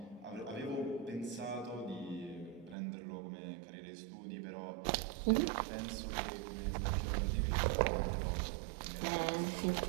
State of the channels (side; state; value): left; drops out; at 2.8 s